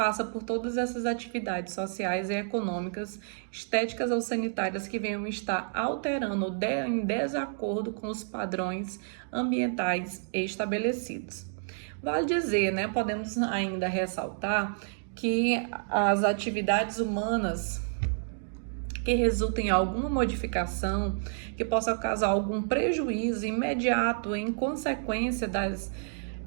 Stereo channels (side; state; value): left; silent; digital silence